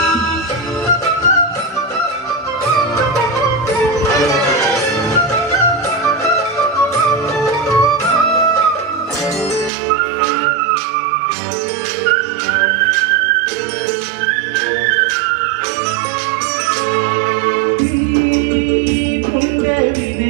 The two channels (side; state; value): left; drops out; at 9.7 s